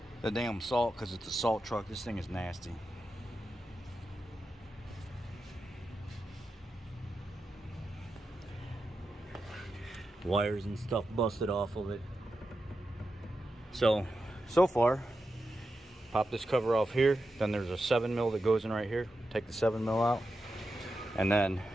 the damn salt, because it's a salt truck, this thing is nasty. Wires and stuff busted off of it. So far, pop this cover off here. Then there's a 7mm that goes in right here. Take the 7mm out. And then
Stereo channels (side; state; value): both; normal; correlation 0.89